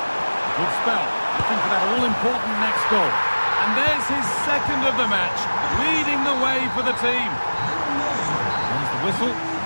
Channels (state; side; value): inverted; both; correlation -1.00